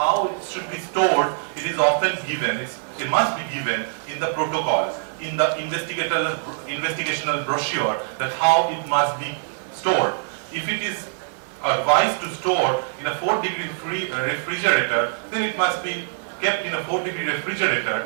it should be stored, it is often given. It must be given in the protocol, in the investigational brochure, that how it must be stored. If it is advised to store in a 4-degree refrigerator, then it must be kept in a 4-degree refrigerator,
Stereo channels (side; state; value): left; silent; digital silence